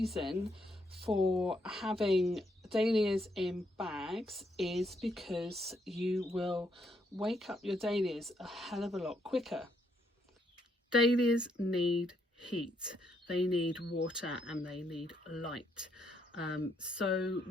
for having dahlias in bags is because you will wake up your dahlias a hell of a lot quicker. Dahlias need heat, they need water, and they need light. So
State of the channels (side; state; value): both; normal; correlation 0.75